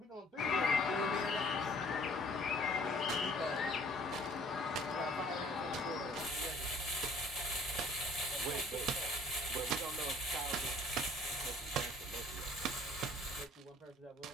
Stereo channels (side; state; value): both; normal; correlation 0.56